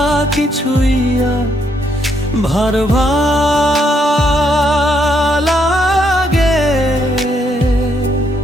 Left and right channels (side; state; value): both; normal; correlation 0.74